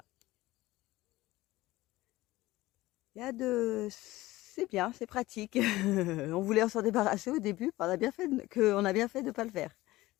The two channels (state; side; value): quieter; right; 18.0 dB